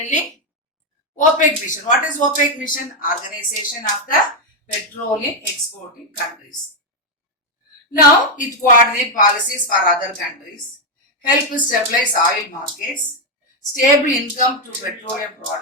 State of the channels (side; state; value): both; normal; correlation 0.03